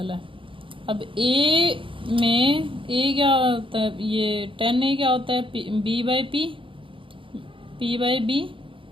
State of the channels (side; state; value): left; late; 0.25 ms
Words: है। अब A में A क्या होता है, ये tan A क्या होता है, B/P, P/B,